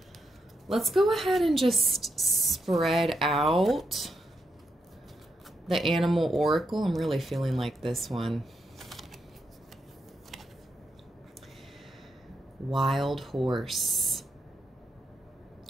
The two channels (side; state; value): both; normal; correlation 0.83